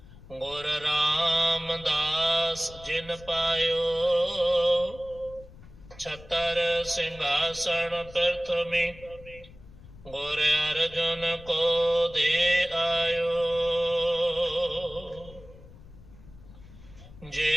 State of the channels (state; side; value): noise; left; rumble, 20 dB below the sound